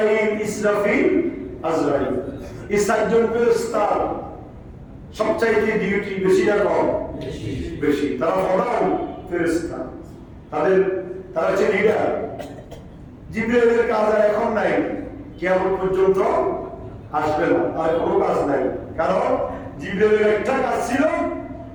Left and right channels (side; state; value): both; identical; correlation 1.00